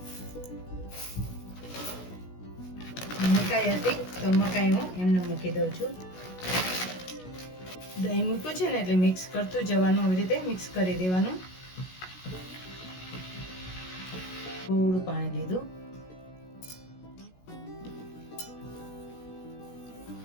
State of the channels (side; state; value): right; late; 16 ms